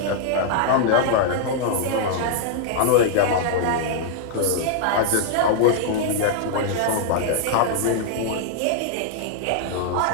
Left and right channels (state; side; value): different; both; correlation -0.01